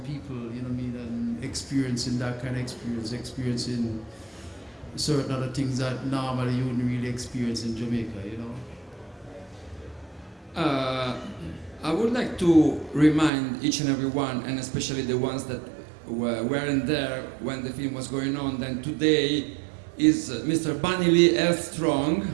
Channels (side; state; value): left; drops out; at 13.3 s